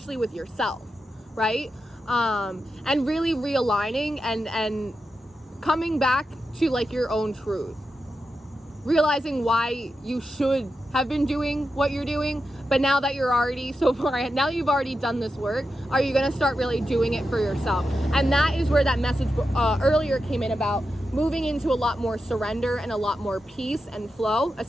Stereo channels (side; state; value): both; normal; correlation 0.89